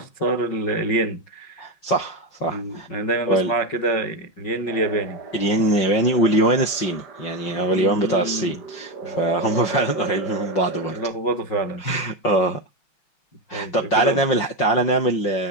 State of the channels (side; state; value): right; late; 5.6 ms